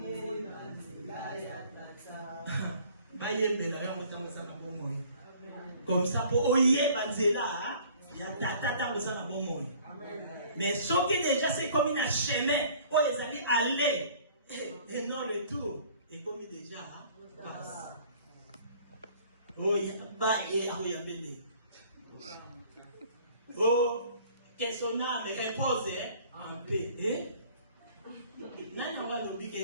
bayembela yango tango sana bomoyi. Comme ça pour oyer banzela, ya tata tango sana bomoyi. Mais ceux qui déjà c'est comme une chemin, pour les aller aller et non retour. Et comme déjà passe. Oh, il y a pas et oh, il y a bébé. Oh, que son âme repose en paix. Nana wa lobi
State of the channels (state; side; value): inverted; both; correlation -0.52